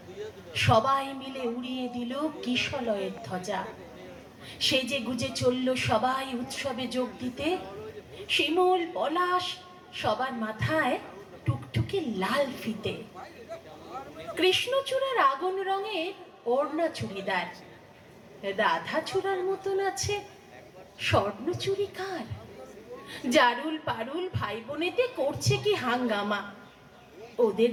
সবাই মিলে উড়িয়ে দিল কিশলয়ের ধ্বজা। সেজে গুজে চলল সবাই উৎসবে যোগ দিতে। শিমুল পলাশ সবার মাথায় টুকটুকে লাল ফিতে। কৃষ্ণচূড়ার আগুন রঙের ওড়না চুড়িদার, রাধা চূড়ার মতন আছে স্বর্ণ চুড়ি কার। জারুল পারুল ভাই বোনেতে করছে কি হাঙ্গামা, ওদের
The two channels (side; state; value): both; identical; correlation 1.00